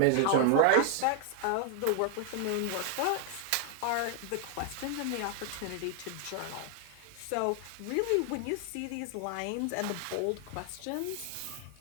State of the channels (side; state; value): both; different; correlation 0.00